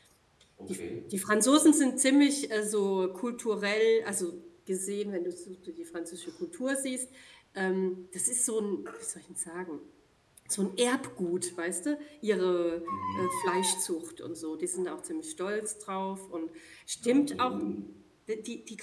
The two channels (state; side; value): identical; both; correlation 1.00